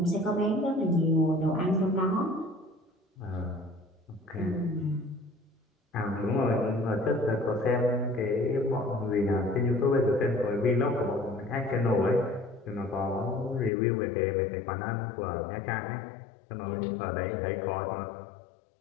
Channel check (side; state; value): right; drops out; at 13.7 s